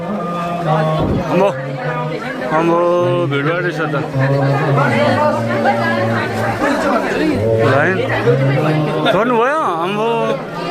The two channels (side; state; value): both; identical; correlation 1.00